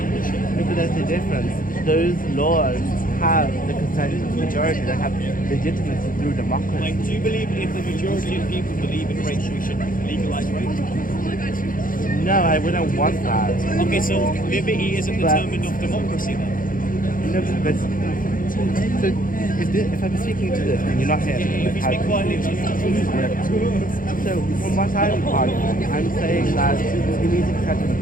bullshit? But there's a difference. Those laws have the consent of the majority. They have legitimacy through democracy. Like, do you believe if the majority of people believe in rape, we should legalize rape? No, I wouldn't want that. Okay, so liberty isn't determined of democracy then? No, but so if I'm speaking to this and you're not here, If you speak quietly, so from what I'm arguing, I'm saying that we need to protect the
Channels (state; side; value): late; right; 0.40 ms